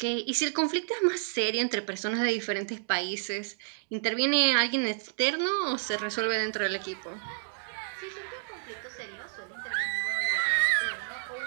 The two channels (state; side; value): silent; left; digital silence